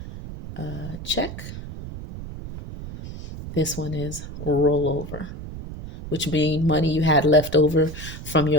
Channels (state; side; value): noise; right; rumble, 10 dB below the sound